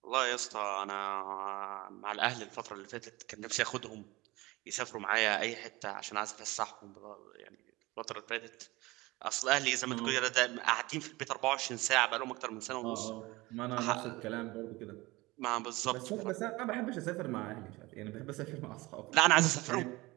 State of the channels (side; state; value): left; quieter; 21.2 dB